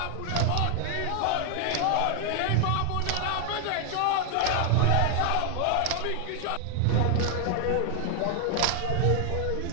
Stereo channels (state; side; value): different; both; correlation 0.00